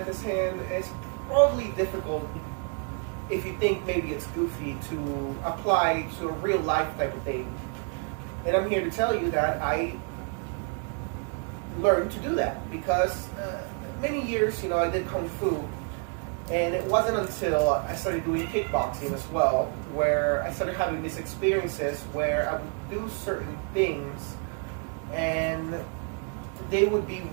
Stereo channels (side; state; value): left; quieter; 38.8 dB